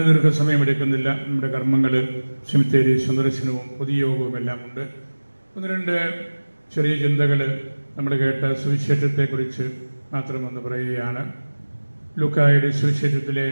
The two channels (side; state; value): both; inverted; correlation -1.00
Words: ദീർഘസമയമെടുക്കുന്നില്ല. നമ്മുടെ കർമ്മങ്ങൾ, സെമിത്തേരി സന്ദർശനവും പൊതുയോഗവും എല്ലാം ഉണ്ട്. ഒന്ന് രണ്ട് ചെറിയ ചിന്തകൾ നമ്മൾ കേട്ട സുവിശേഷത്തെക്കുറിച്ച് മാത്രമൊന്ന് പറയുകയാണ്. ലൂക്കായുടെ സുവിശേഷത്തിലെ